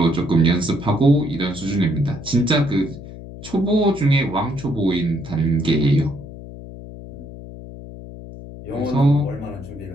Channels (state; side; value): noise; left; hum, 14 dB below the sound